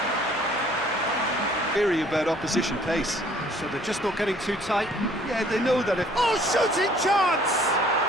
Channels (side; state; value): left; noise; hum, 24 dB below the sound